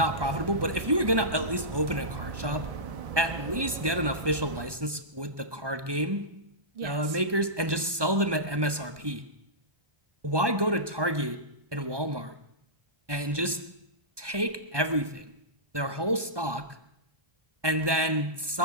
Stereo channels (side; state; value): left; late; 1.2 ms